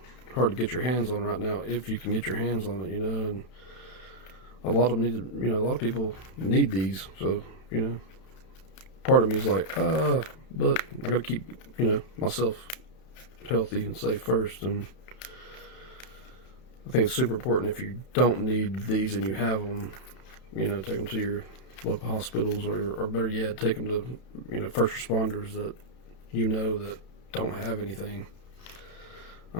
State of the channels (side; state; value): right; late; 32 ms